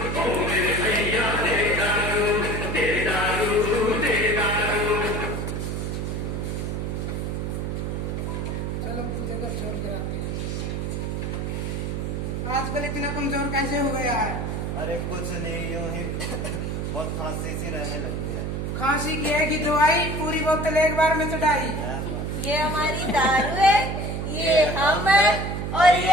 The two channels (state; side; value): noise; right; hum, 2 dB below the sound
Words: चलो पूजा का छोड़ कर आते हैं। आजकल इतना कमजोर कैसे हो गया है? अरे कुछ नहीं, यूं ही बहुत खांसी सी रहने लगी है। खांसी की है कि दवाई पूरी बोतल एक बार में चढ़ाई। ये हमारी दारू है, ये हम है और